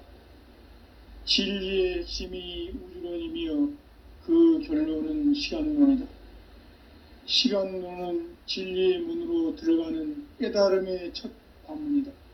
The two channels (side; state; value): both; identical; correlation 1.00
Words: 진리의 핵심이 우주론이며 그 결론은 시간론이다. 시간론은 진리의 문으로 들어가는 깨달음의 첫 관문이다.